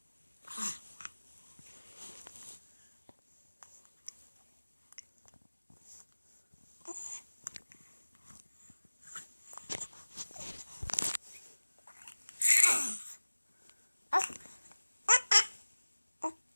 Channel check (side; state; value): both; inverted; correlation -1.00